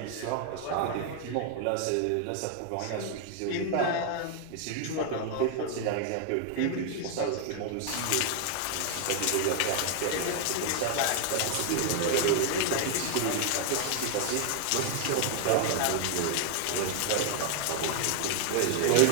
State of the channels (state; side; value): different; both; correlation 0.00